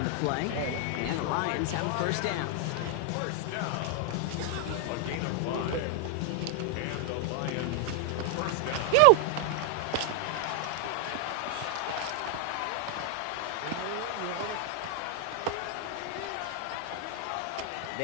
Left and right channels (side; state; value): both; different; correlation 0.00